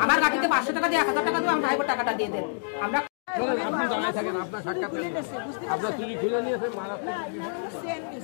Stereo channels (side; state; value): right; silent; digital silence